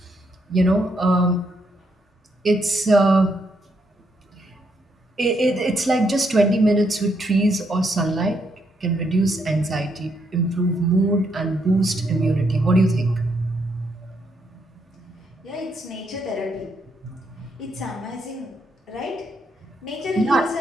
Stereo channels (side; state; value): both; normal; correlation 0.76